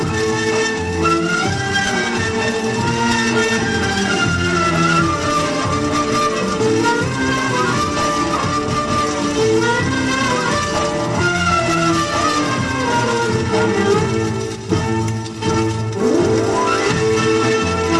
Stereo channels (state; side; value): identical; both; correlation 1.00